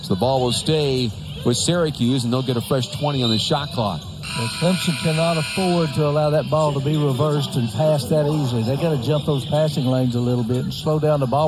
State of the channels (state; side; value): identical; both; correlation 1.00